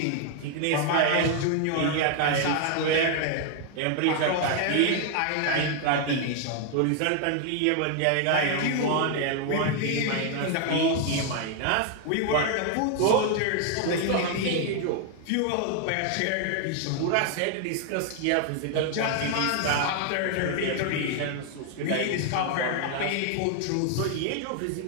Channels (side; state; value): both; different; correlation 0.00